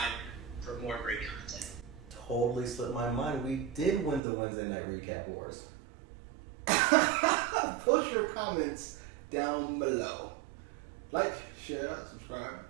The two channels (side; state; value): left; drops out; at 4.2 s